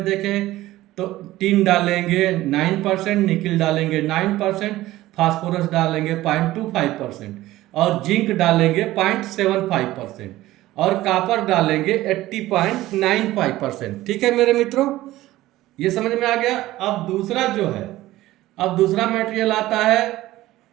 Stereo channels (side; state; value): left; quieter; 16.3 dB